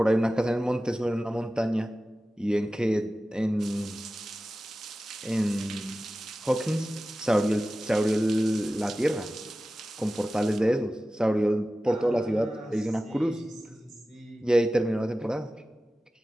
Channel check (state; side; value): normal; both; correlation 0.95